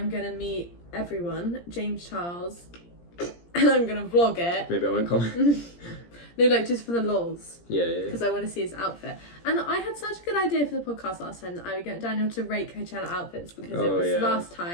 going to meet everyone, James Charles, and I'm going to vlog it. Maybe I won't come. No, like just for the lols. Yeah. Because I want to see his outfit. And I had such a good idea for the podcast last time that I would get Daniel to rate Coachella outfits because it was last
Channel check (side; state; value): right; late; 17 ms